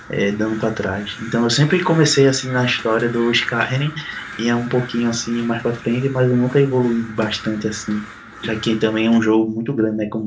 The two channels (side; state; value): both; identical; correlation 1.00